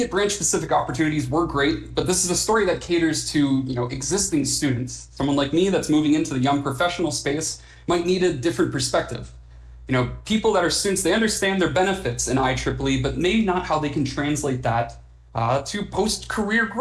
branch-specific opportunities were great, but this is a story that caters to, existing students. Someone like me that's moving into the young professional space might need a different perspective. People that are students, they understand their benefits in IEEE, but maybe not how they can translate that to post-career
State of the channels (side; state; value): both; identical; correlation 1.00